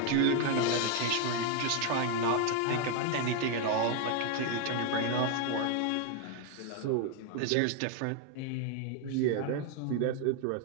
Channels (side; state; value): both; different; correlation 0.00